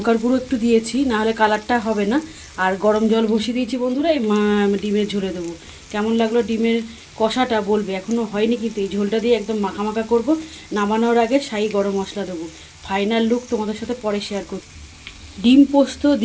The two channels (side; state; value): both; identical; correlation 1.00